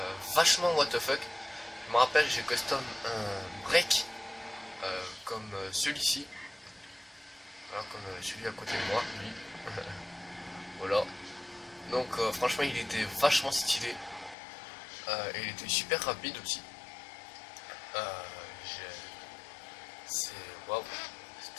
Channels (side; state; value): right; drops out; at 14.4 s